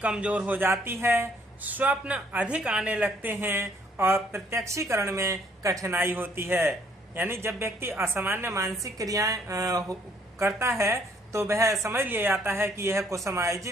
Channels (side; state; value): both; normal; correlation 0.65